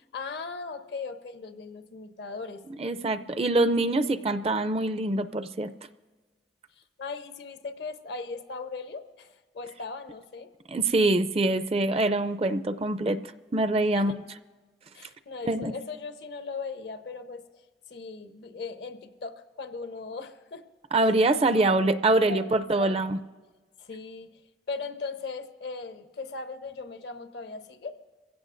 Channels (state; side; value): normal; both; correlation 0.45